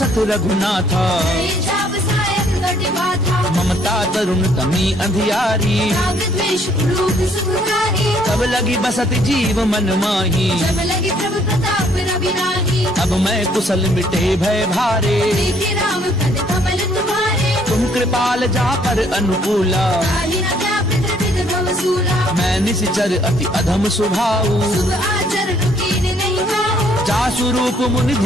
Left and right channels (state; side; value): normal; both; correlation 0.65